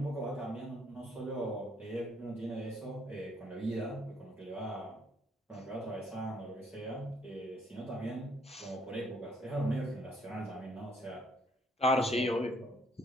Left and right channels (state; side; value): normal; both; correlation 0.66